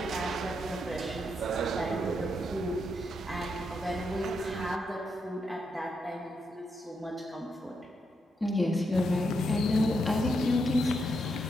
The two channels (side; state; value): both; normal; correlation 0.81